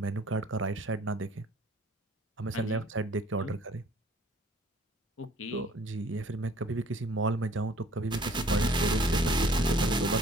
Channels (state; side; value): normal; both; correlation 0.55